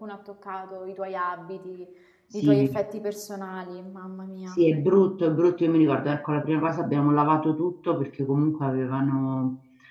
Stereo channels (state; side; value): identical; both; correlation 1.00